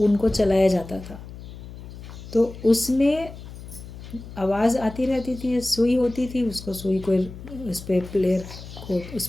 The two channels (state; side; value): noise; left; hum, 14 dB below the sound